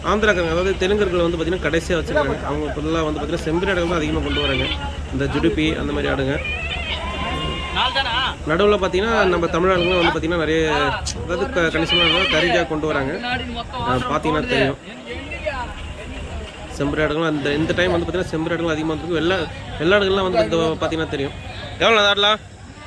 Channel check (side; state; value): both; identical; correlation 1.00